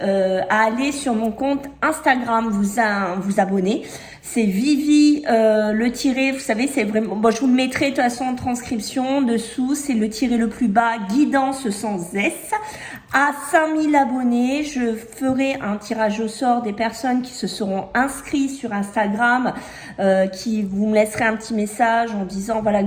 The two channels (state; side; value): identical; both; correlation 1.00